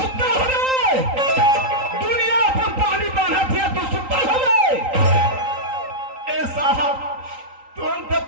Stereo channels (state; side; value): late; left; 3.8 ms